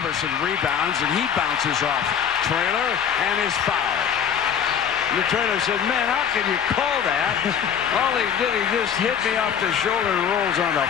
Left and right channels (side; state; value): right; quieter; 8.0 dB